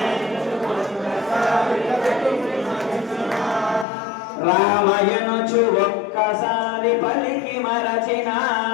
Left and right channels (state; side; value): drops out; right; at 3.9 s